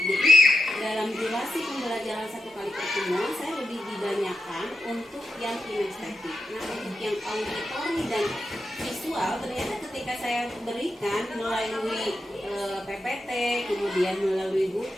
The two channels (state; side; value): normal; both; correlation 0.86